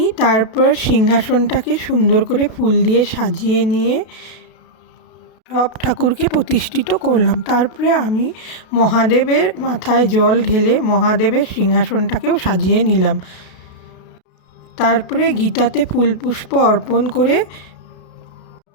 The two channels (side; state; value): right; late; 32 ms